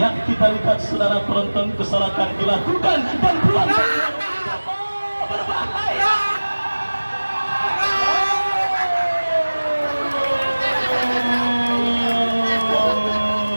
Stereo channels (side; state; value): both; inverted; correlation -1.00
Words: kita lihat saudara penonton, kesalahan dilakukan dan peluang berbahaya.